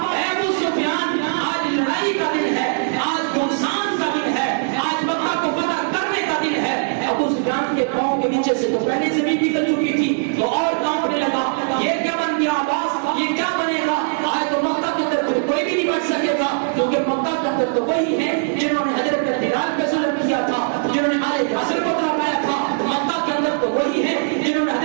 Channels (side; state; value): left; silent; digital silence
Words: اے ابو سفیان آج لڑائی کا دن ہے, آج گھمسان کا دن ہے, آج مکہ کو فتح کرنے کا دن ہے. ابو سفیان قیامت تو وہی ہیں جنہوں نے حضرت بلال پہ ظلم کیا تھا، جنہوں نے آل یاسر کو تڑپایا تھا۔ مکہ کے اندر تو وہی ہیں جنہوں نے